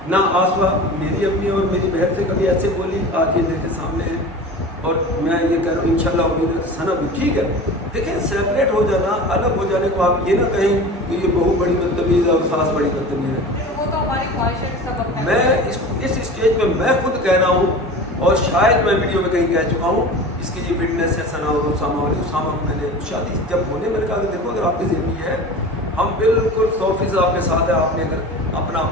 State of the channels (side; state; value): both; normal; correlation 0.35